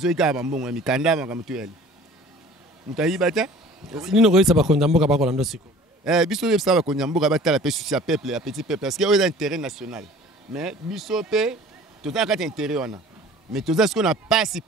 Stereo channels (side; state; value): both; normal; correlation 0.47